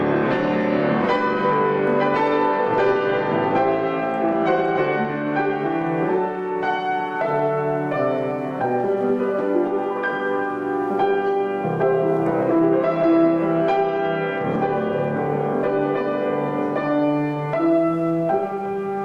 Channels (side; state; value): both; identical; correlation 1.00